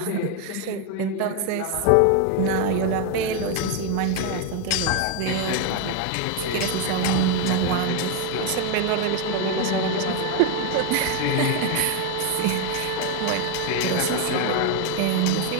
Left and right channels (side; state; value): both; different; correlation 0.01